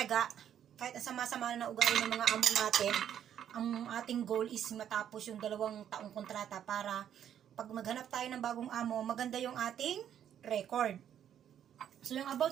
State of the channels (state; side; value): quieter; left; 9.7 dB